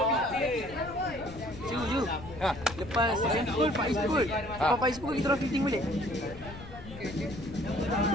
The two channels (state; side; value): noise; left; rumble, 14 dB below the sound